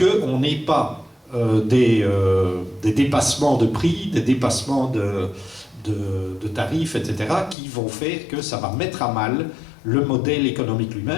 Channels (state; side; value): drops out; right; at 7.6 s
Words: n'ait pas des dépassements de prix, des dépassements de tarifs, etc., qui vont faire que ça va mettre à mal le modèle économique